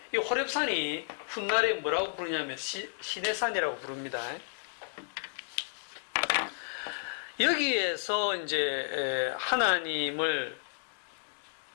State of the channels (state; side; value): silent; right; digital silence